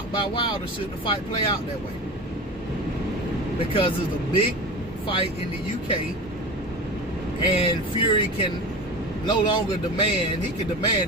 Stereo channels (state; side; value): normal; both; correlation 0.30